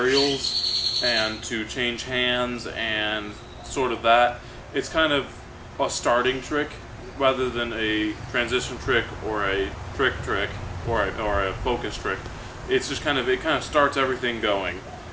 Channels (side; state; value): both; identical; correlation 1.00